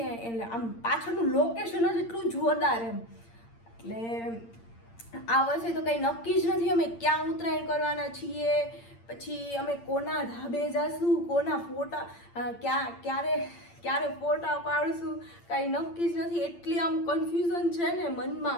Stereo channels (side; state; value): right; late; 8.7 ms